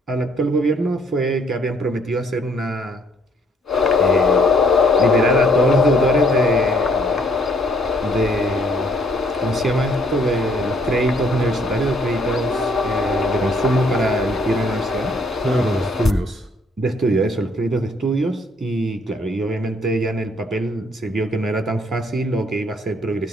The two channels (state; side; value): normal; both; correlation 0.65